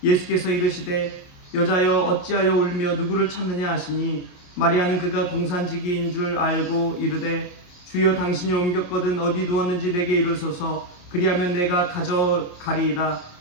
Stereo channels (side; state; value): right; late; 28 ms